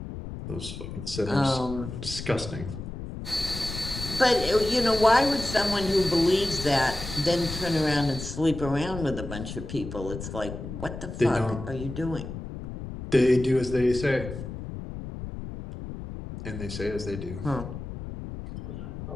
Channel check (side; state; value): left; noise; rumble, 9 dB below the sound